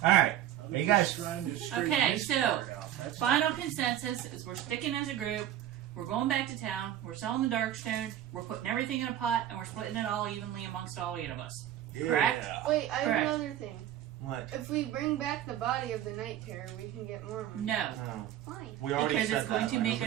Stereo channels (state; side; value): quieter; left; 11.8 dB